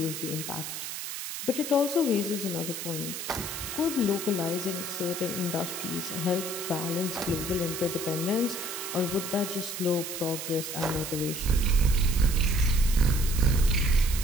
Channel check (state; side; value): noise; right; hiss, 6 dB below the sound